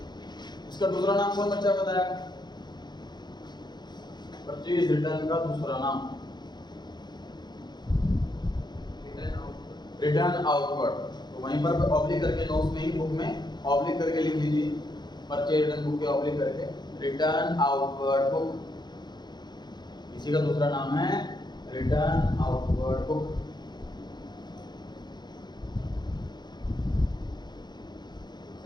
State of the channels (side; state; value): right; late; 0.21 ms